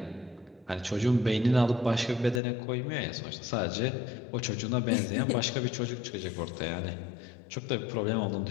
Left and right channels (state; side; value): drops out; right; at 2.4 s